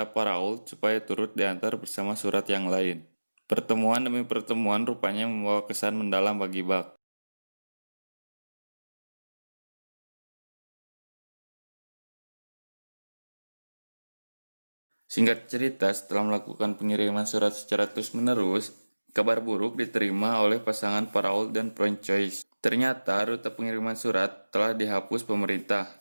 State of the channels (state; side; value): inverted; both; correlation -1.00